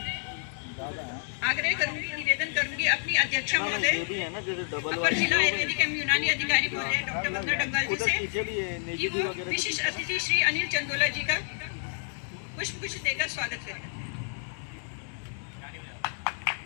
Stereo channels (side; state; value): right; silent; digital silence